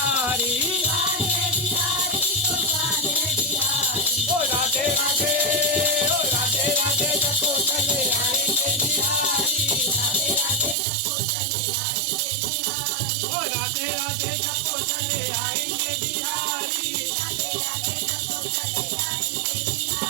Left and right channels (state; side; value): drops out; left; at 10.8 s